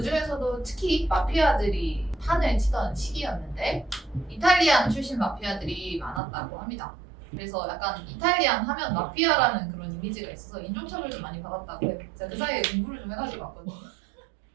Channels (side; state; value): left; drops out; at 6.2 s